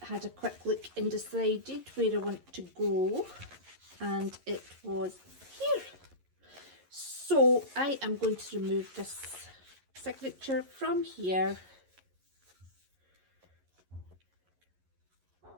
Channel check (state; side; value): late; left; 11 ms